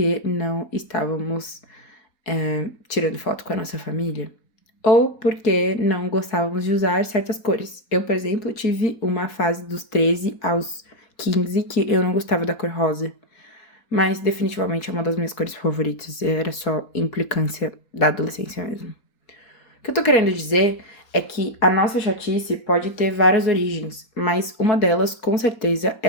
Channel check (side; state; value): right; late; 4.2 ms